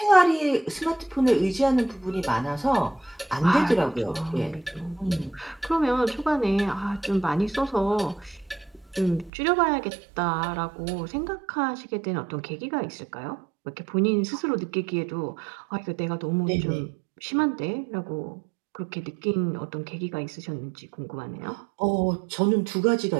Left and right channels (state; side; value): drops out; left; at 9.3 s